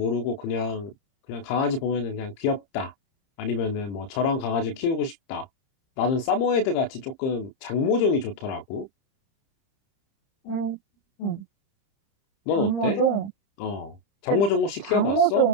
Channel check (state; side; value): late; right; 30 ms